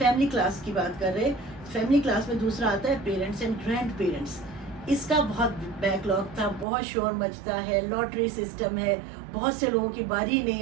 کلاس کی بات کر رہے. فیملی کلاس میں دوسرا آتا ہے پیرنٹس اینڈ گرینڈ پیرنٹس. اس کا بہت بیک لاگ تھا، بہت شور مچتا ہے، لاٹری سسٹم ہے، بہت سے لوگوں کی باری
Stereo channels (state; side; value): drops out; left; at 6.7 s